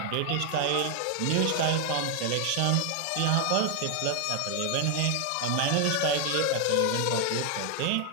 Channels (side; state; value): both; different; correlation 0.00